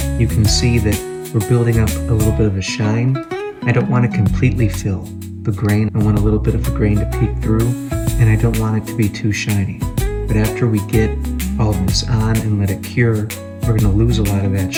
You can see that we're building up a little bit of a shine. I don't want to completely fill the grain. I want a little bit of the grain to peek through, and I don't want it to be too shiny. But after we get all of this on and let it cure, we're going to lose a lot of that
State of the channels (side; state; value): both; identical; correlation 1.00